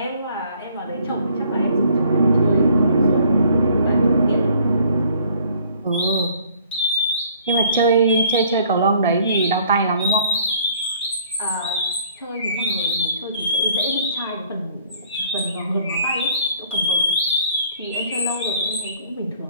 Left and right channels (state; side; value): inverted; both; correlation -0.58